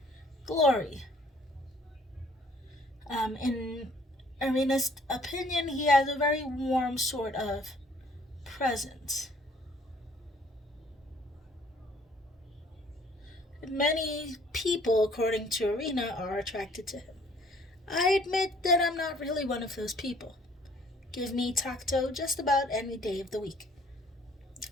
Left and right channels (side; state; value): both; normal; correlation 0.59